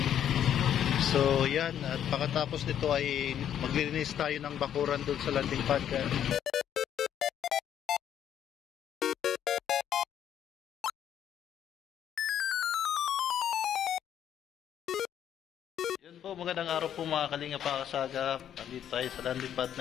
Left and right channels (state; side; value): quieter; right; 9.9 dB